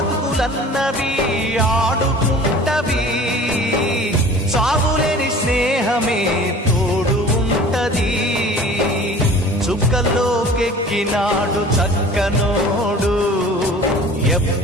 ఆడుకుంటవి, సాగులేని స్నేహమే తోడు ఉంటది. చుక్కల్లోకెక్కినాడు చక్కనోడు,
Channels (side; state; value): both; normal; correlation 0.44